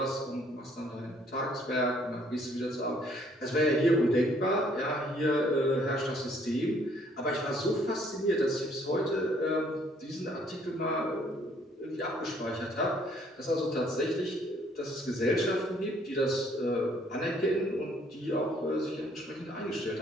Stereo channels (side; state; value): both; normal; correlation 0.63